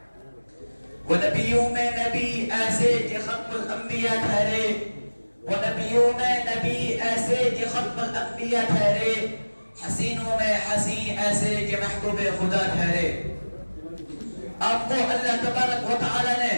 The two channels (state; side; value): inverted; both; correlation -1.00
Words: وہ نبیوں میں نبی ایسے کہ ختم الانبیاء ٹھہرے، وہ نبیوں میں نبی ایسے کہ ختم الانبیاء ٹھہرے، حسینوں میں حسین ایسے کہ محبوب خدا ٹھہرے۔ آپ کو اللہ تبارک و تعالی نے